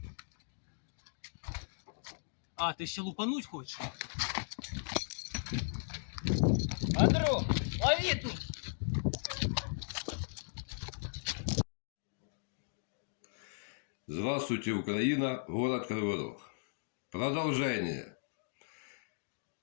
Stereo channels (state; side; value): silent; right; digital silence